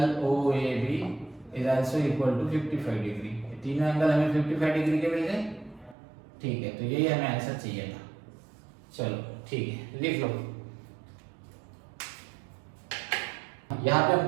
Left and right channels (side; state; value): left; drops out; at 6.0 s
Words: O A B is also equal to 55 degree. तीनों एंगल हमें 55 डिग्री के मिल गए, ठीक है, तो यही हमें आंसर चाहिए था। चलो ठीक है, लिख लो। यहाँ पे